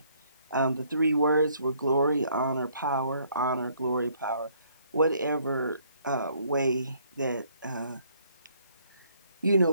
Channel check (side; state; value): both; inverted; correlation -0.65